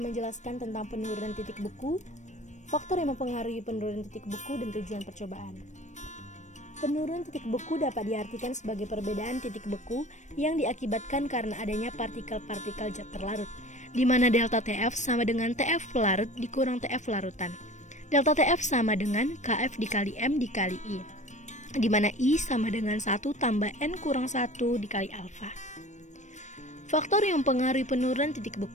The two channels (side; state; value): right; late; 0.34 ms